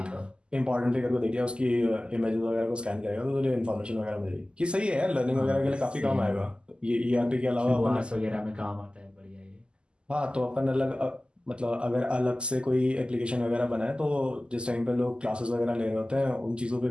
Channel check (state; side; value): late; left; 0.050 ms